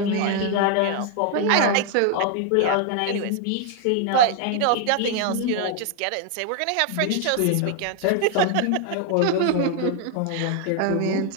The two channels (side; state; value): both; different; correlation 0.00